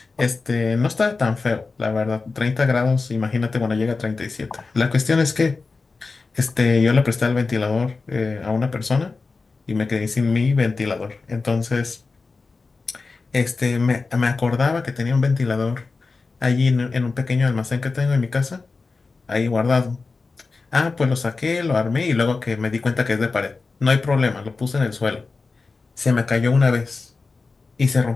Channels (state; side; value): quieter; right; 4.1 dB